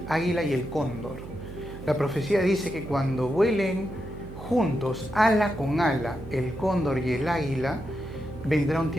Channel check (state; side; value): noise; right; hum, 12 dB below the sound